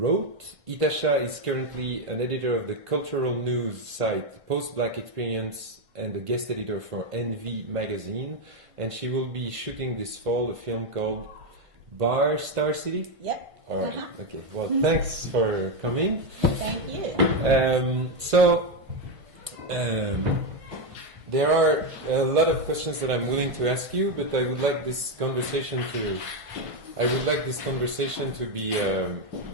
Ytasha is currently an editor of the cultural news site Post-Black Experience and a guest editor for Envy magazine. And she will be shooting this fall a film called Bar Star City? Yep. All right. Okay. Well, thanks for coming. Thank you. There are a lot of questions that I'm willing to ask you, but I would like this conversation to be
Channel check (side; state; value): left; late; 1.5 ms